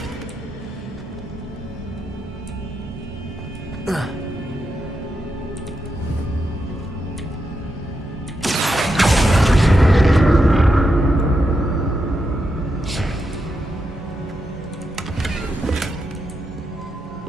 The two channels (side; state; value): both; normal; correlation 0.85